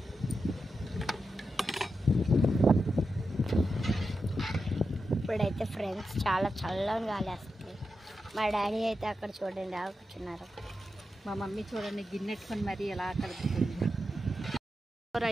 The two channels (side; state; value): both; normal; correlation 0.89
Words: ఇప్పుడైతే ఫ్రెండ్స్ చాలా చల్లగా గాలేస్తుంది. మా డాడీ అయితే అక్కడ చూడండి కూర్చున్నారు. మా మమ్మీ చూడండి గిన్నెట్టుకొని మరి ఎలా కలుపుతుంది.